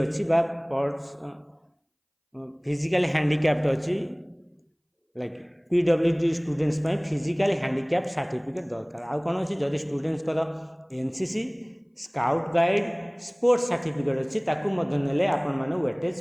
फिजिकल हैंडिकैप्ड अच्छी like PWD students physical handicapped certificate दरकार आउ कौन अच्छी जदि students NCC scout guide sports certificate अच्छी ने आपण मैंने वेटेज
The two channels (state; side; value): identical; both; correlation 1.00